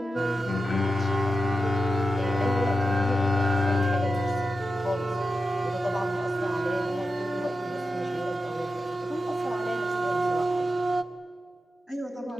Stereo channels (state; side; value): normal; both; correlation 0.90